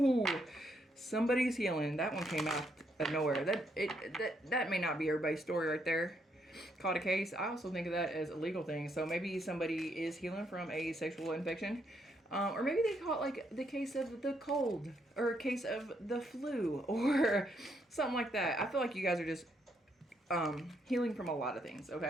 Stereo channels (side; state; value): both; normal; correlation 0.75